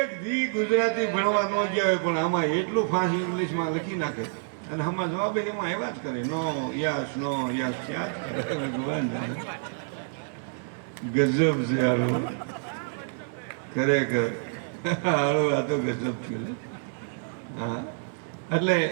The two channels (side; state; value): left; silent; digital silence